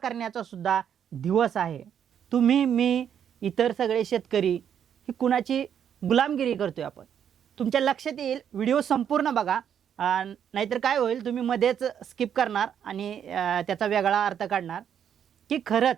सुद्धा दिवस आहे. तुम्ही, मी, इतर सगळे शेतकरी ही कुणाची गुलामगिरी करतोय आपण? तुमच्या लक्षात येईल, व्हिडिओ संपूर्ण बघा. नाहीतर काय होईल, तुम्ही मध्येच स्किप करणार आणि त्याचा वेगळा अर्थ काढणार की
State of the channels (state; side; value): quieter; left; 8.7 dB